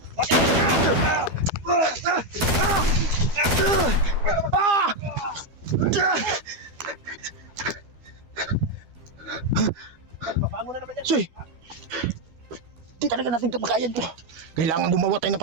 Bakit alisin ko? Ah! Babangon na naman yan. Soy! Di talaga natin kapakayan to. Kailangan gumawa tayo ng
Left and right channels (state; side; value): late; left; 12 ms